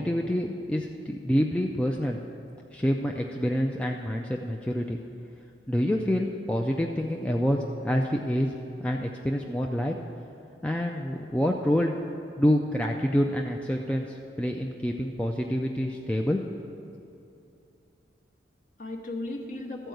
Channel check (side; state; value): both; normal; correlation 0.91